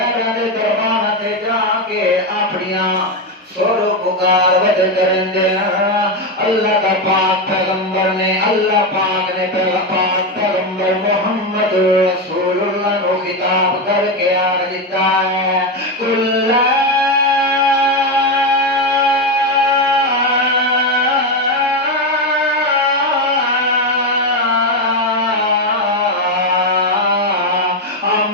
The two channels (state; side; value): normal; both; correlation 0.10